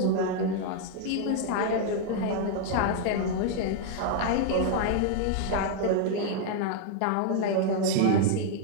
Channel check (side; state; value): both; different; correlation 0.00